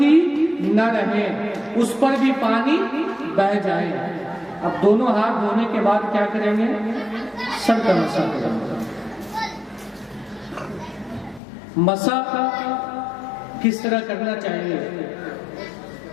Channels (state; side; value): drops out; right; at 11.4 s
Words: نہ رہے، اس پر بھی پانی بہہ جائے۔ اب دونوں ہاتھ دھونے کے بعد کیا کریں گے؟ سر کا مسح کریں گے۔ مسح کس طرح کرنا چاہیے؟